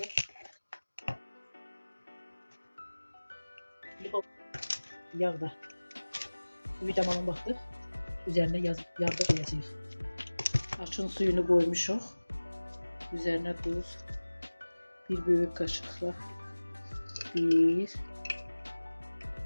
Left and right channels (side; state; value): both; inverted; correlation -1.00